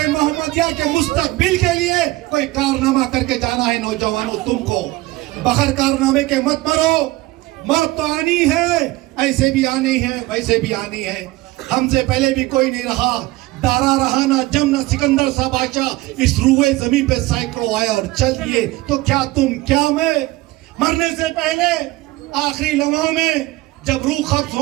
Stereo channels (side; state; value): left; quieter; 19.2 dB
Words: मोहम्मदिया के मुस्तकबिल के लिए कोई कारनामा करके जाना है। नौजवानों, तुमको बगैर कारनामे के मत मरो। मौत तो आनी है, ऐसे भी आनी है, वैसे भी आनी है। हमसे पहले भी कोई नहीं रहा, दारा रहा ना जम ना सिकंदर सा बादशाह, इस रूए जमीन पे सैकड़ों आए और चल दिए, तो क्या तुम क्या मैं। मरने से पहले आखिरी लम्हों में जब रूह कब्ज